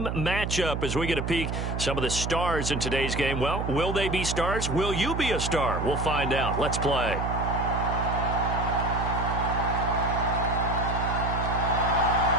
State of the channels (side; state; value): right; noise; hum, 2 dB below the sound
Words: matchup as we get a peek some of the stars in today's game. Well, will they be stars? Will you be a star? We'll find out. Let's play.